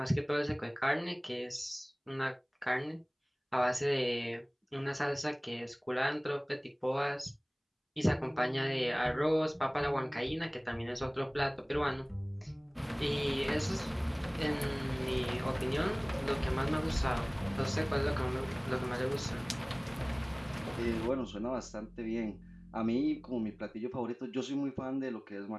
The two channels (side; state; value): both; identical; correlation 1.00